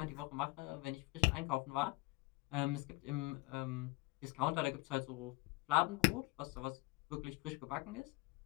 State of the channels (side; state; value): right; quieter; 23.1 dB